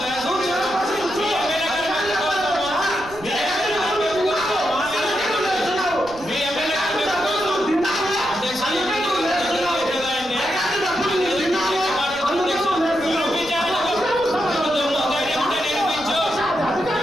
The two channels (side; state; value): right; noise; rumble, 19 dB below the sound